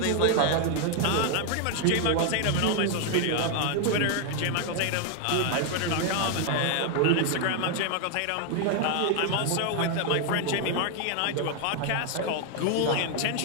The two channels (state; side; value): different; both; correlation 0.00